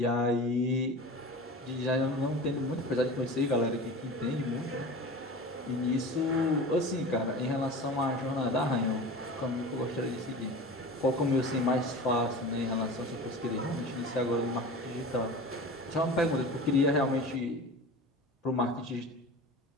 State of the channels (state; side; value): normal; both; correlation 0.34